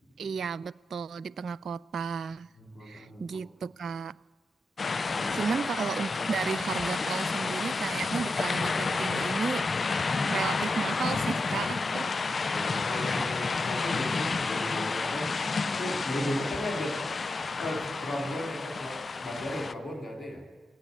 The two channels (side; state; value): both; normal; correlation 0.87